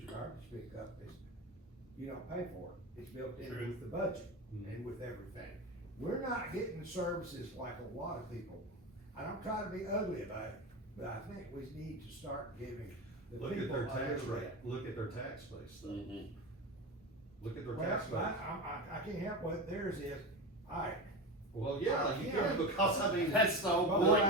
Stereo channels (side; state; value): both; normal; correlation 0.22